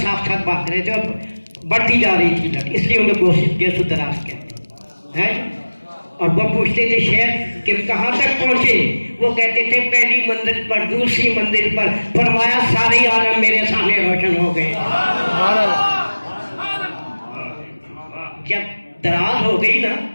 ساتھ ساتھ بھاگ رہے تھے اور بڑھتی جا رہی تھی لٹ, اس لیے انہیں گیسو دراز کہتے ہیں. اور وہ پوچھتے تھے شیخ کہ کہاں تک پہنچے؟ وہ کہتے تھے پہلی منزل پر, دوسری منزل پر. فرمایا سارے عالم میرے سامنے روشن ہو گئے. جب دراز ہو گئی نا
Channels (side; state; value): both; inverted; correlation -1.00